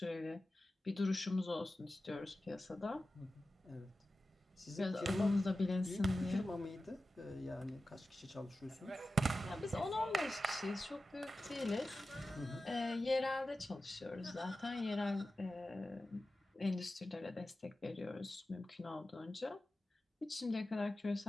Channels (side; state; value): both; normal; correlation 0.94